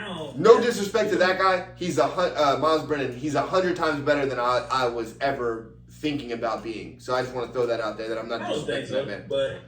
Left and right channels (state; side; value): identical; both; correlation 1.00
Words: No disrespect to that guy. He's Miles Brennan. He's 100 times better than I was ever thinking about being. So I just want to throw that out there that I'm not disrespecting that man. But